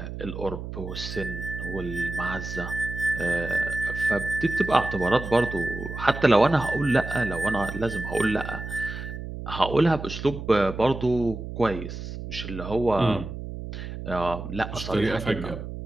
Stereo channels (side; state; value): right; noise; hum, 8 dB below the sound